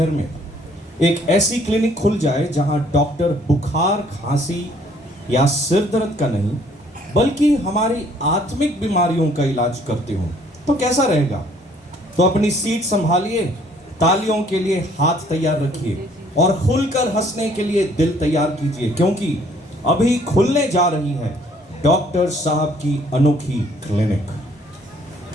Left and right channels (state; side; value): normal; both; correlation 0.61